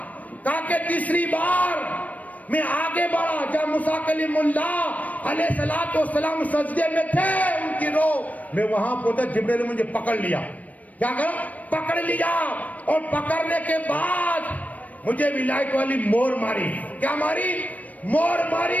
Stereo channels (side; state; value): right; late; 0.072 ms